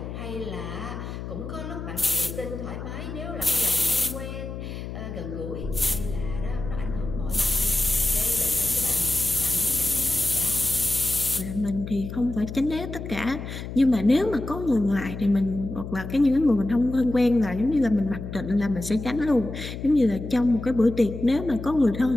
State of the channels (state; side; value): noise; left; hum, 8 dB below the sound